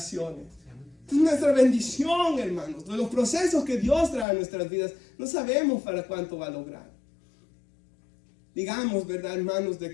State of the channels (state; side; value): drops out; right; at 4.2 s